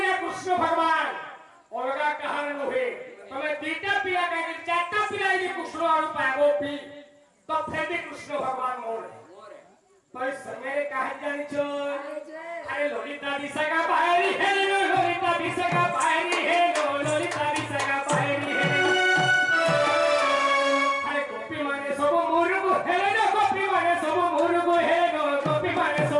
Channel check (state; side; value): identical; both; correlation 1.00